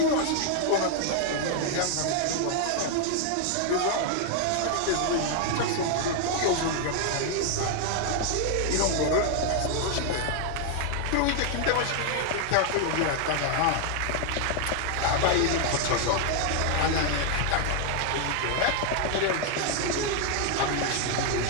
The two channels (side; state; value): both; different; correlation 0.00